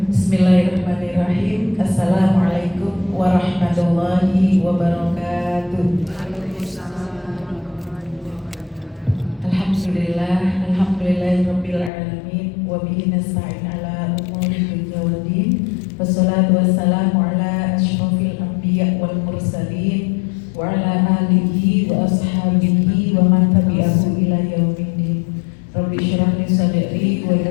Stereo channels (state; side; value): drops out; right; at 11.9 s